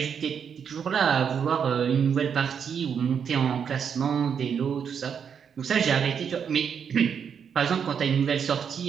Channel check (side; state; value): left; quieter; 7.3 dB